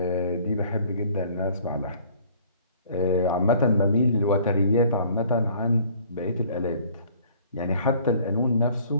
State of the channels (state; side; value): inverted; both; correlation -0.55